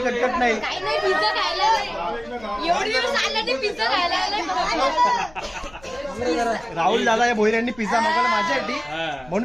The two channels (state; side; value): noise; left; hum, 24 dB below the sound